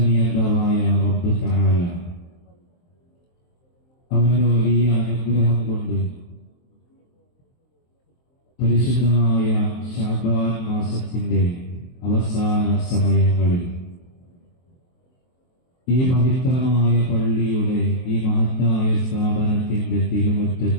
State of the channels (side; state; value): right; late; 23 ms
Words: റബ്ബ് തആല അവന്റെ വലിയ അനുഗ്രഹം കൊണ്ട് പരിശുദ്ധമായ ശഅബാൻ മാസത്തിന്റെ അവസാന സമയങ്ങളിൽ ഈ പവിത്രമായ പള്ളിയുടെ ഈ മഹത്തായ സ്ഥാപനത്തിന്റെ